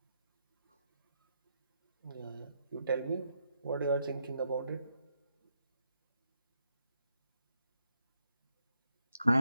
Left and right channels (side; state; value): both; inverted; correlation -0.81